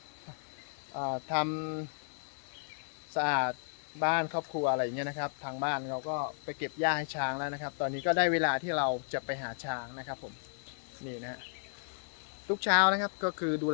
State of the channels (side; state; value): right; silent; digital silence